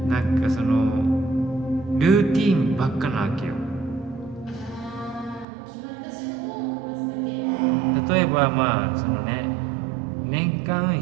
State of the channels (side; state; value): left; drops out; at 5.5 s